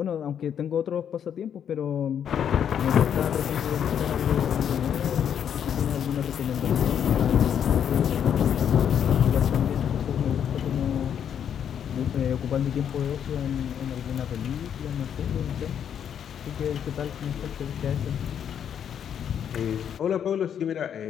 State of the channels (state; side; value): quieter; right; 8.7 dB